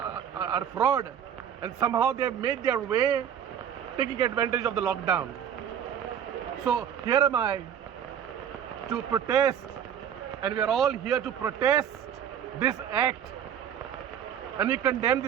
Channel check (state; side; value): quieter; left; 8.9 dB